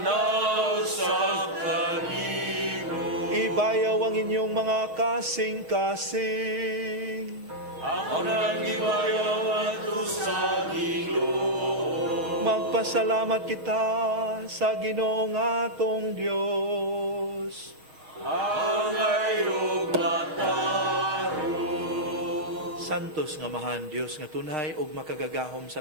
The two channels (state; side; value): late; left; 6.5 ms